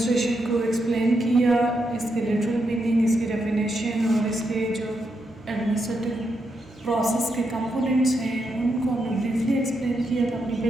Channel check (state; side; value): normal; both; correlation 0.82